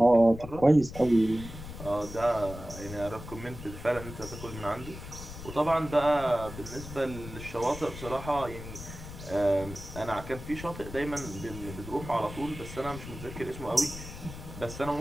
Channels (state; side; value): noise; left; rumble, 12 dB below the sound